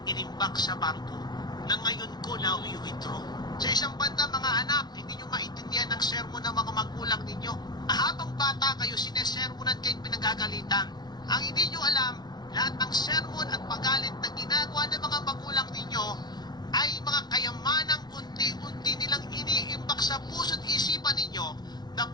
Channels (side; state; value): right; late; 0.20 ms